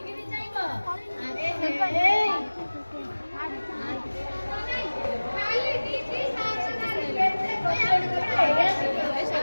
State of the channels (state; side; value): inverted; both; correlation -1.00